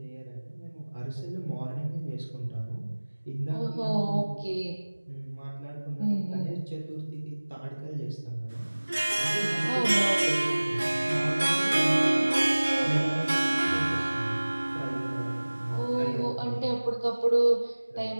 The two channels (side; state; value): both; inverted; correlation -1.00